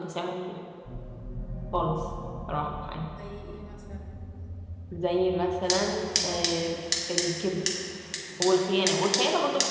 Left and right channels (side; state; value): both; identical; correlation 1.00